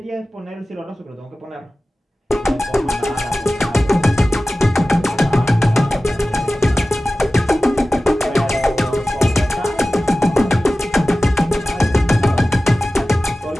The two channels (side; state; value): both; normal; correlation 0.96